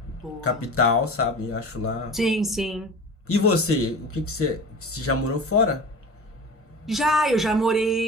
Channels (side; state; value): both; normal; correlation 0.34